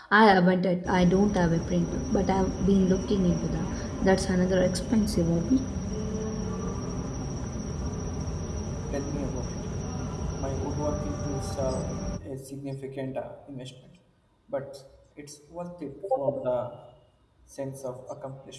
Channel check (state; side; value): identical; both; correlation 1.00